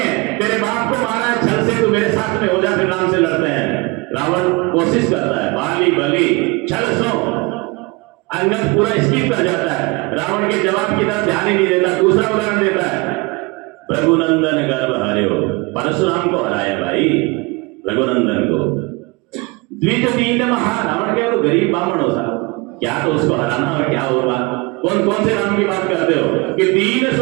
तेरे बाप को मारा है छल से, तू मेरे साथ में हो जा, फिर राम से लड़ते हैं। रावण कोशिश करता है, बाली बलि छल सो। अंगद पूरा स्किप कर जाता है, रावण के जवाब की तरफ ध्यान ही नहीं देता। दूसरा उदाहरण देता है, रघुनंदन गर्भ हर्यो। परशुराम को हराया भाई, रघुनंदन को। द्विज दीन महा, रावण क्या तो गरीब बामण हो साहब, क्या तो उसको हराना और क्या और बात। कौन कौन से राम की बात करते हो कि दीन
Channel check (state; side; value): quieter; left; 26.2 dB